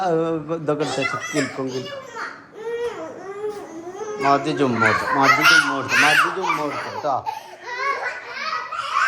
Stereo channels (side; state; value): both; identical; correlation 1.00